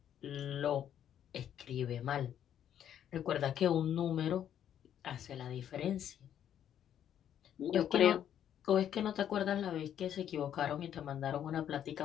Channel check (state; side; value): quieter; right; 10.0 dB